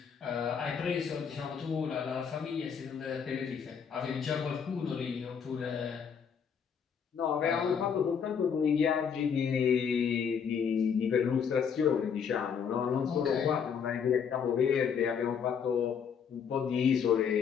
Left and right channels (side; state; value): right; quieter; 7.0 dB